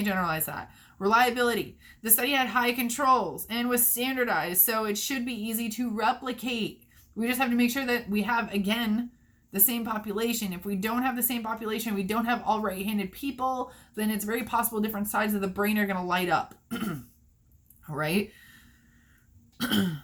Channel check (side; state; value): both; identical; correlation 1.00